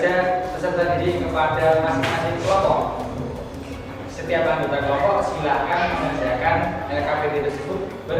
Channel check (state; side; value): identical; both; correlation 1.00